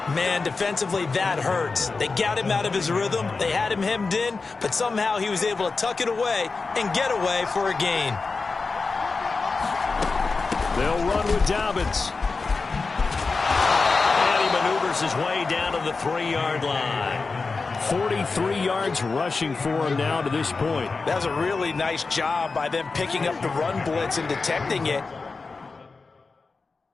Man, defensively, that hurts. They got him out of his rhythm. They had him hemmed in, but somehow he was able to tuck it away and get away for a gain. They'll run with Dobbins. And he maneuvers his way down to the 3-yard line. 43 yards rushing for him now to this point. That was a really nice job by them picking up the run blitz and detecting it.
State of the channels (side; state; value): right; quieter; 4.2 dB